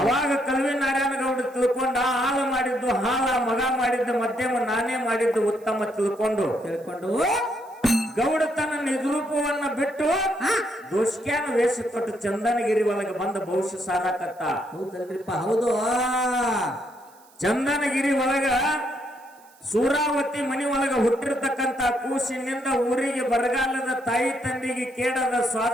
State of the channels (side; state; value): right; noise; hiss, 29 dB below the sound